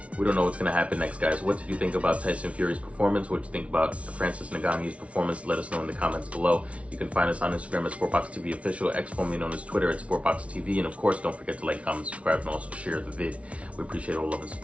We don't know what's going to happen next, guys. What did you think about Tyson Fury's performance? What did you think about Francis Ngannou's performance? Let us know in the comments below. You can find us on Instagram at SportBox TV Official, X formerly known as Twitter at SportBox TV. And of course, don't forget to like, comment, subscribe, and also share the vid. We appreciate all love and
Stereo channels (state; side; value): late; left; 0.063 ms